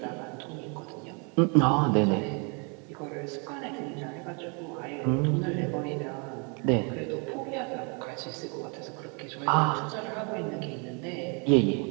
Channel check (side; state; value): left; quieter; 34.9 dB